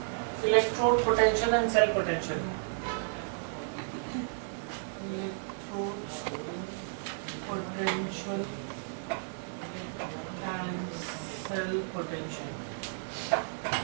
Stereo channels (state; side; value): silent; left; digital silence